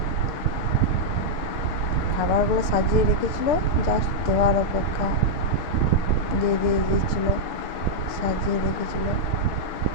খাবারগুলো সাজিয়ে রেখেছিল, জাস্ট দেওয়ার অপেক্ষা। দিয়ে দিয়েছিল, সাজিয়ে রেখেছিল।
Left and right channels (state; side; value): late; right; 6.6 ms